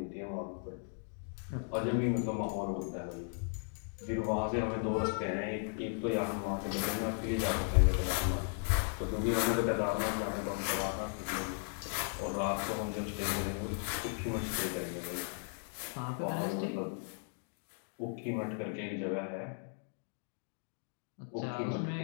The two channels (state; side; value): silent; right; 54 dB below the other